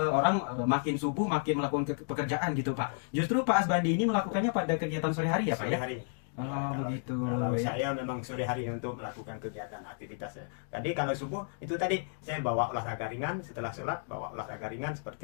makin subuh makin melakukan pekerjaan gitu Pak. Justru Pak Asbandi ini melakukannya pada kegiatan sore hari ya Pak Sore ya? hari. Oh, begitu. Kalau Ya. saya memang sore hari untuk melakukan kegiatan aktivitasnya. Tadi kalau subuh itu tadi saya bawa olahraga ringan, setelah sholat bawa olahraga ringan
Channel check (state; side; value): silent; right; 56 dB below the other